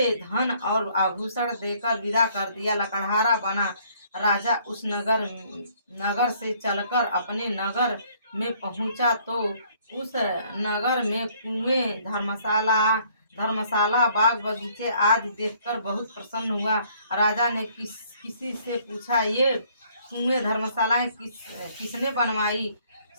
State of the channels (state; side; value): inverted; both; correlation -0.62